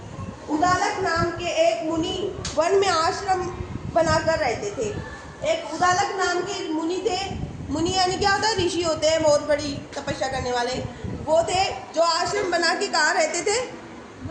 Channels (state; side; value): identical; both; correlation 1.00